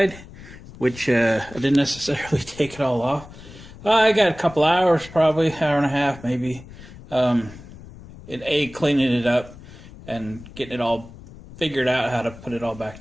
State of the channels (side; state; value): left; noise; rumble, 18 dB below the sound